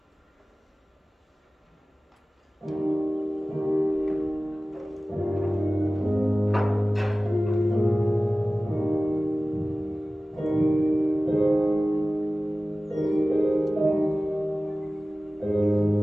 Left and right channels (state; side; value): normal; both; correlation 0.96